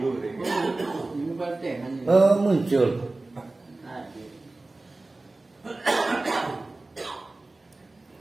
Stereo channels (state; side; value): quieter; left; 3.1 dB